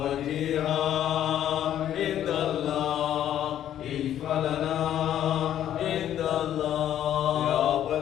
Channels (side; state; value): right; quieter; 11.1 dB